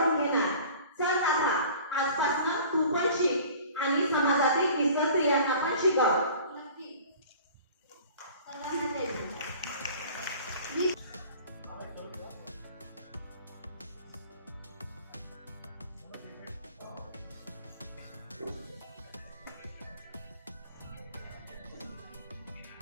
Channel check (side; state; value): both; inverted; correlation -0.45